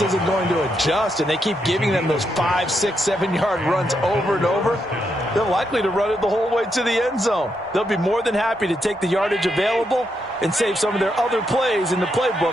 isn't going to adjust and they keep giving them those 5, 6, 7-yard runs over and over, they're likely to run it the whole way to the end zone. They'll be more than happy to take the yardage available and save some of their other plays in the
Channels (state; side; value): normal; both; correlation 0.81